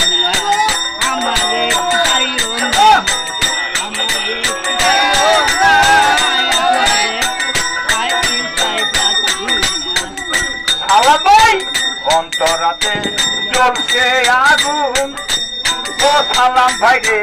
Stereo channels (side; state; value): both; identical; correlation 1.00